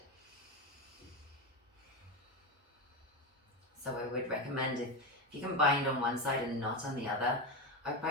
So I would recommend if you can bind on one side and not on the other,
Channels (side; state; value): both; normal; correlation 0.14